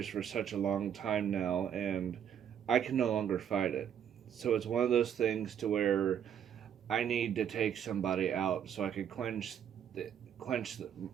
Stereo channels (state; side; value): quieter; left; 9.0 dB